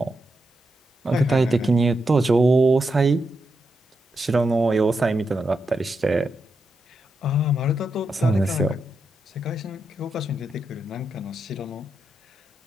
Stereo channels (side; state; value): both; normal; correlation 0.85